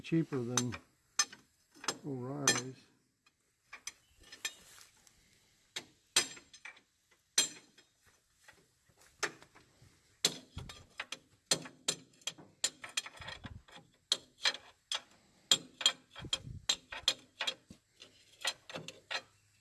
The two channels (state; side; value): identical; both; correlation 1.00